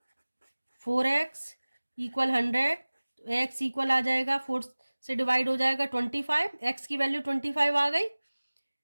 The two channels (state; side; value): inverted; both; correlation -1.00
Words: 4x इक्वल 100, x इक्वल आ जाएगा 4 से डिवाइड हो जाएगा 25, x की वैल्यू 25 आ गई।